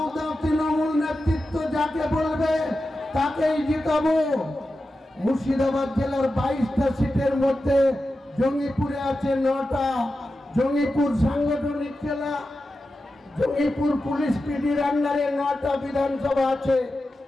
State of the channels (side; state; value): both; normal; correlation 0.91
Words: তৃণমূল নেতৃত্ব যাকে বলবে তাকেই জিতাবো। মুর্শিদাবাদ জেলার 22টা সিটের মধ্যে জঙ্গিপুরে আছে 9টা। জঙ্গিপুর সাংগঠনিক জেলা, জঙ্গিপুর পুলিশ পিডির আন্ডারে 9টা বিধানসভা আছে।